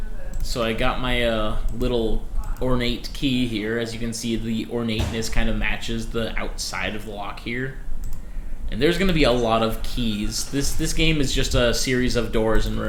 So I got my little ornate key here. As you can see, the ornateness kind of matches the outside of the lock here. And there's going to be a lot of keys. This game is just a series of doors and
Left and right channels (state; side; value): identical; both; correlation 1.00